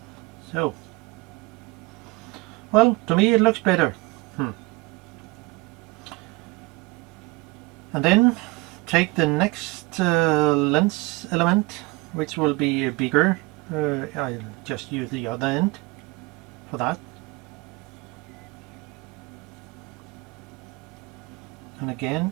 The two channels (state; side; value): quieter; left; 23.7 dB